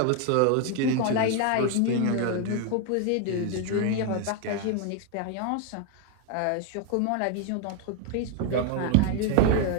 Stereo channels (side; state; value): both; different; correlation 0.00